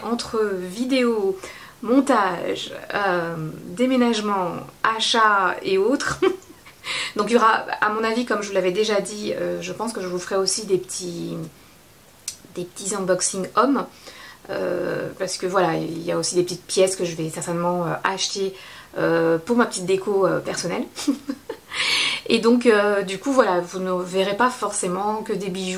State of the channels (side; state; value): both; identical; correlation 1.00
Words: entre vidéo, montage, déménagement, achat et autres. Donc il y aura, à mon avis, comme je vous l'avais déjà dit, je pense que je vous ferai aussi des petits unboxing hommes. Parce que voilà, il y a aussi des petites pièces que je vais certainement acheter pour ma petite déco personnelle. Et donc du coup voilà, vous ne verrez pas forcément que des